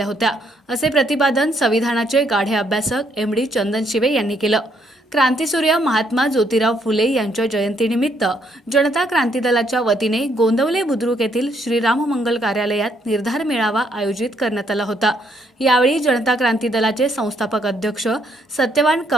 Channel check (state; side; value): normal; both; correlation 0.71